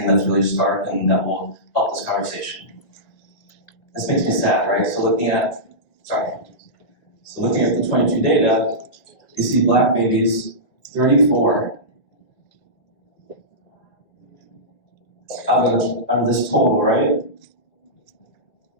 that's really stark and that will help this conversation. This makes me sad, right? So looking at the 22 data, you see Black babies, 34 out of this total, right?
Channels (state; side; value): late; right; 2.2 ms